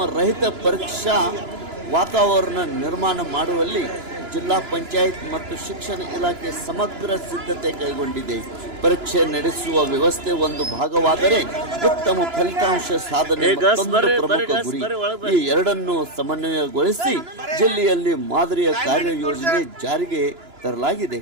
ರಹಿತ ಪರೀಕ್ಷಾ ವಾತಾವರಣ ನಿರ್ಮಾಣ ಮಾಡುವಲ್ಲಿ ಜಿಲ್ಲಾ ಪಂಚಾಯತ್ ಮತ್ತು ಶಿಕ್ಷಣ ಇಲಾಖೆ ಸಮಗ್ರ ಸಿದ್ಧತೆ ಕೈಗೊಂಡಿದೆ. ಪರೀಕ್ಷೆ ನಡೆಸುವ ವ್ಯವಸ್ಥೆ ಒಂದು ಭಾಗವಾದರೆ ಉತ್ತಮ ಫಲಿತಾಂಶ ಸಾಧನೆ ಮತ್ತೊಂದು ಪ್ರಮುಖ ಗುರಿ. ಈ ಎರಡನ್ನು ಸಮನ್ವಯಗೊಳಿಸಿ ಜಿಲ್ಲೆಯಲ್ಲಿ ಮಾದರಿಯ ಕಾರ್ಯಯೋಜನೆ ಜಾರಿಗೆ ತರಲಾಗಿದೆ.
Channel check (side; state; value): left; late; 2.9 ms